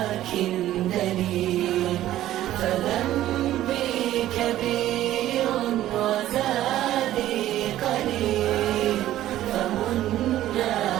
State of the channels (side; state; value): left; quieter; 13.6 dB